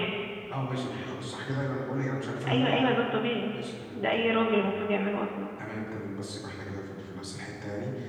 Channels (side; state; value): both; identical; correlation 1.00